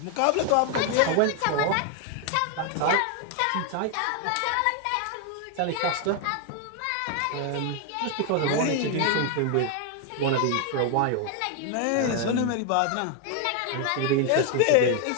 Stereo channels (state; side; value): different; both; correlation 0.01